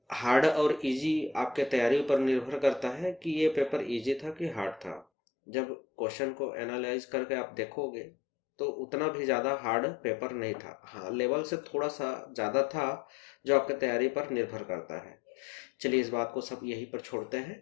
हार्ड और इजी आपके तैयारी पर निर्भर करता है कि ये पेपर इजी था कि हार्ड था। जब क्वेश्चन को एनालाइज करके आप देखोगे तो उतना भी ज़्यादा हार्ड पेपर नहीं था। हाँ, लेवल से थोड़ा सा ज़्यादा था, जो आपके तैयारी पर निर्भर करता है। चलिए इस बात को सब यहीं पर छोड़ते हैं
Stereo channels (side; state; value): right; drops out; at 5.1 s